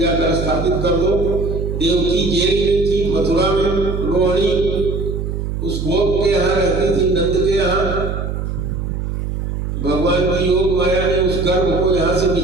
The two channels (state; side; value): noise; right; hum, 3 dB below the sound